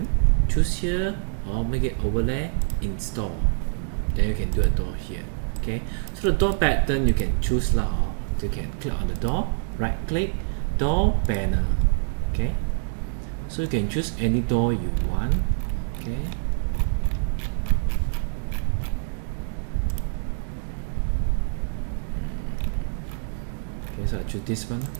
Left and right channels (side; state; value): left; silent; digital silence